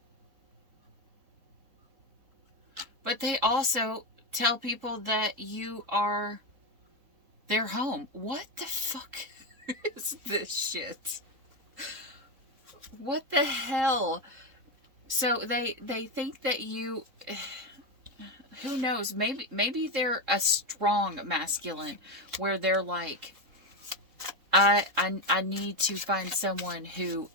But they also tell people that you are their home. What the fuck is this shit? What the hell? So they think that you, who knows, maybe they're a strong masculine where they're like, I need to find someone who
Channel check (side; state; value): left; late; 3.7 ms